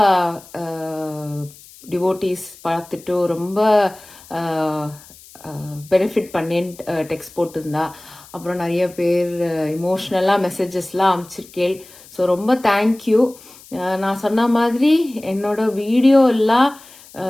டிவோட்டீஸ் பார்த்துட்டு ரொம்ப பெனிஃபிட் பண்ணேன்னு டெக்ஸ்ட் போட்டிருந்தா. அப்புறம் நிறைய பேர் இமோஷ்னலாக மெசேஜஸ்லாம் அனுப்பிச்சிருக்கேன். ஸோ ரொம்ப தேங்க்யூ. நான் சொன்ன மாதிரி என்னோட வீடியோ எல்லாம்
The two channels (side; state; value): left; noise; hiss, 22 dB below the sound